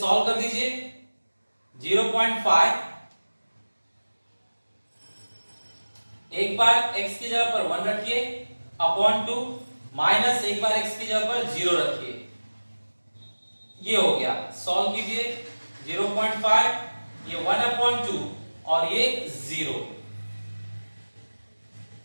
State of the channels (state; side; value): inverted; both; correlation -1.00